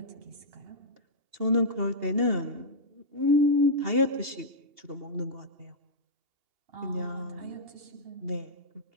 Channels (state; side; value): late; left; 2.8 ms